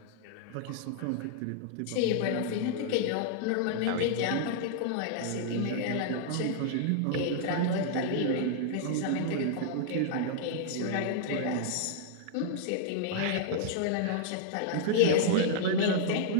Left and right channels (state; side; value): different; both; correlation -0.01